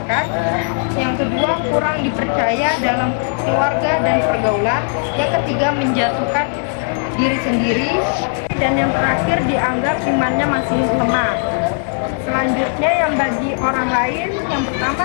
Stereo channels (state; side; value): silent; right; 60 dB below the other